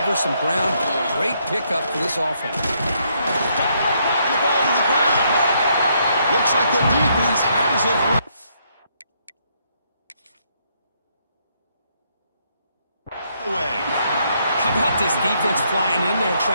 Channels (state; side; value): inverted; both; correlation -0.73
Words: some ground? Great pickup for this offense. And the ball to the ground. Looks like the defense has it. How about this defense flying in there